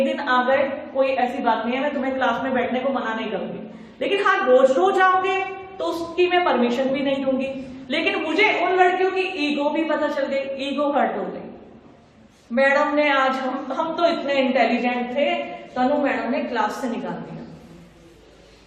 दिन आ गए, कोई ऐसी बात नहीं है, मैं तुम्हें क्लास में बैठने को मना नहीं करूंगी, लेकिन हाँ रोज रोज आओगे तो उसकी मैं परमिशन भी नहीं दूंगी। लेकिन मुझे उन लड़कियों की ईगो भी पता चल गई, ईगो हर्ट हो गई। मैडम ने आज हम तो इतने इंटेलिजेंट थे, तनु मैडम ने क्लास से निकाल दिया।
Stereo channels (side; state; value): both; identical; correlation 1.00